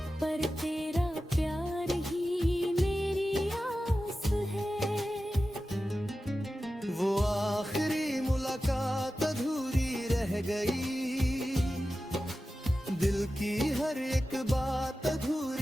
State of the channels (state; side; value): normal; both; correlation 0.94